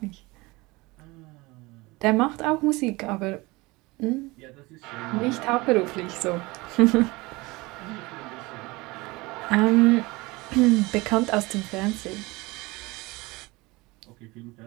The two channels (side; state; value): left; quieter; 22.8 dB